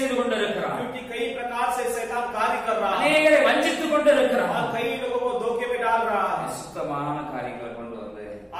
கொண்டிருக்கிறார். क्योंकि कई प्रकार से शैतान कार्य कर रहा है, அநேகரை வஞ்சித்துக் கொண்டிருக்கிறார். कई लोगों को धोखे में डाल रहा है, சுத்தமான காரியங்களை கொண்டு வந்து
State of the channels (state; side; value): identical; both; correlation 1.00